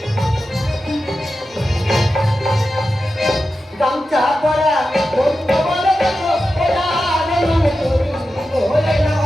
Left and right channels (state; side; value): normal; both; correlation 0.91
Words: গামছা পরা বন্ধ বলে দেখো ওরা নমন করি ওরে না